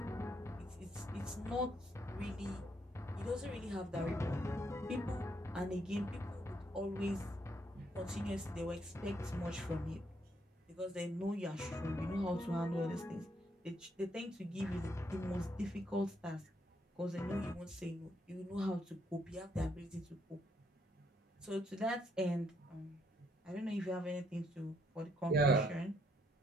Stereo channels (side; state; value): both; normal; correlation 0.73